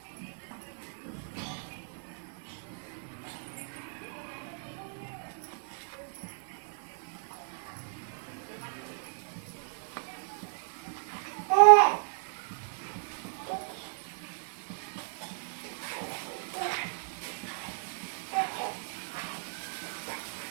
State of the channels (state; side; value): silent; left; 55 dB below the other